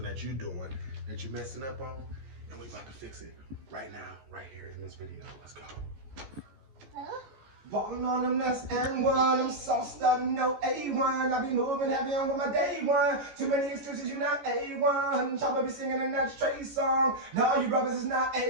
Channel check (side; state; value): left; late; 15 ms